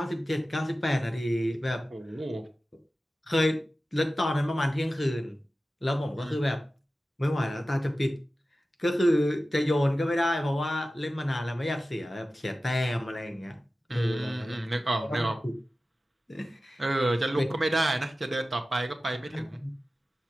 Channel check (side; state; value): both; normal; correlation 0.95